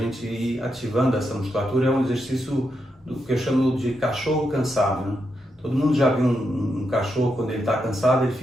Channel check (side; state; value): both; normal; correlation 0.83